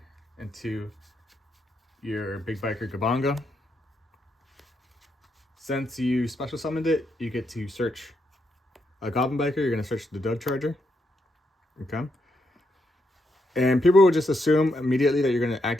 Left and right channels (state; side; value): normal; both; correlation 0.80